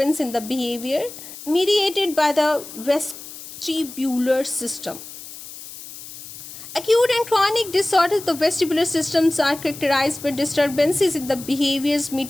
in the behavior mediated by the vestibular system. Acute and chronic disorders of the vestibular systems are characterized by disturbances in the behaviors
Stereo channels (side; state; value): left; noise; hiss, 14 dB below the sound